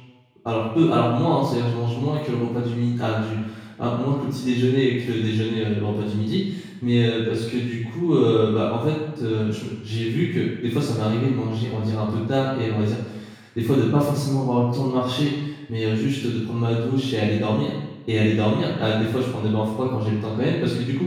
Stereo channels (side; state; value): both; identical; correlation 1.00